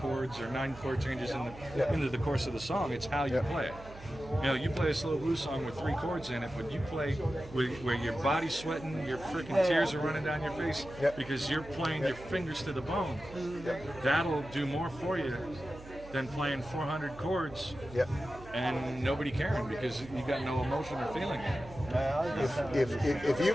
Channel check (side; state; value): right; noise; hum, 17 dB below the sound